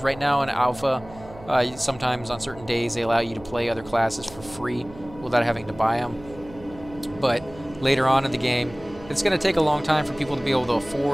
Right now in Alpha, sometimes on certain days they allow you to play other classes for free without having to buy them. But later on in the game, it's going to take a long time for people to be able to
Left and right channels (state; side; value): noise; right; hum, 19 dB below the sound